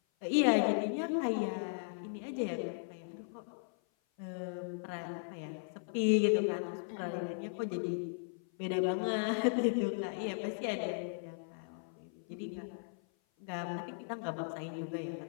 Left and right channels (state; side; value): silent; right; 53 dB below the other